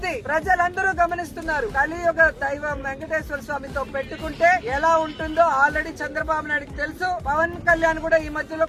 ప్రజలందరూ గమనిస్తున్నారు. కలియుగ దైవం వెంకటేశ్వర స్వామితో పెట్టుకుంటే ఎలా ఉంటుందో ఆల్రెడీ చంద్రబాబు నాయుడుకి తెలుసు. పవన్ కళ్యాణ్ కూడా ఈ మధ్యలో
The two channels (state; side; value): identical; both; correlation 1.00